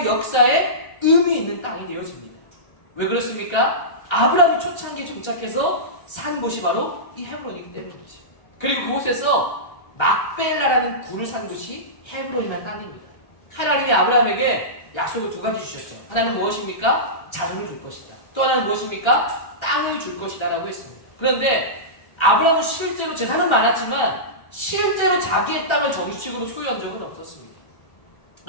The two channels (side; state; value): right; late; 1.3 ms